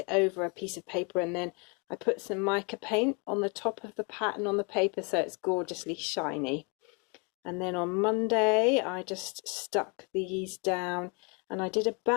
over a piece of paper, and then I put some mica paint on the top of the pattern on the paper so it's gorgeously shiny. And then on Monday I just stuck these down, and I did a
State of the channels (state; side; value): quieter; right; 33.5 dB